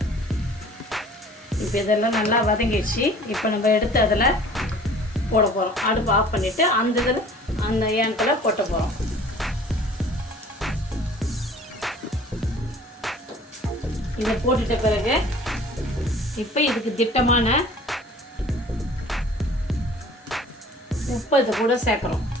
இப்போ இதெல்லாம் நல்லா வதங்கிடுச்சு. இப்போ நம்ம எடுத்து அதில் போட போகிறோம். அடுப்பு ஆஃப் பண்ணிவிட்டு அந்த ஏனத்தில் போட்ட போகிறோம். இதை போட்டுட்ட பிறகு இப்போ இதுக்கு திட்டமான உப்பு இது கூட சேர்க்குறோம்.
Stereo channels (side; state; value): both; normal; correlation 0.49